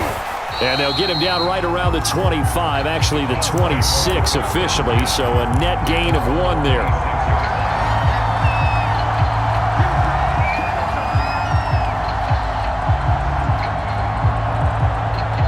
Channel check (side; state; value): both; identical; correlation 1.00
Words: And they'll get him down right around the 25, actually the 26 officially, so a net gain of 1 there.